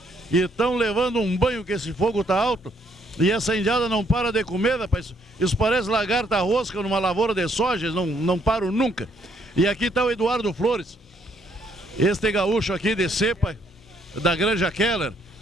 e estão levando um banho que esse fogo tá alto. E essa indiada não para de comer, rapaz. Isso parece lagarta rosca numa lavoura de soja, não param nunca. E aqui está o Eduardo Flores, este gaúcho aqui de cepa, da Granja Keller,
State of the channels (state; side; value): normal; both; correlation 0.69